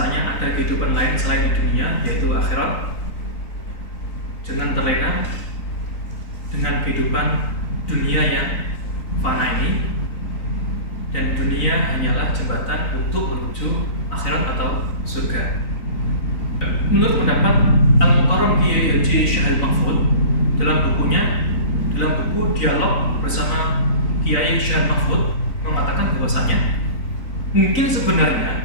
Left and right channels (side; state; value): right; late; 3.9 ms